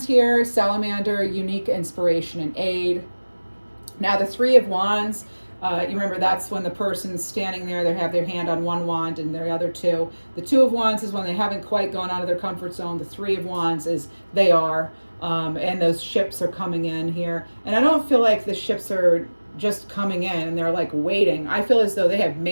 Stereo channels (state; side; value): inverted; both; correlation -1.00